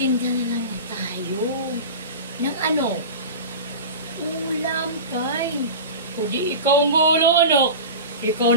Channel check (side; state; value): both; inverted; correlation -0.31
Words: na lang tayo. Ng ano? Ulam, Tay. Kundi ikaw ang gulo, anak. Ikaw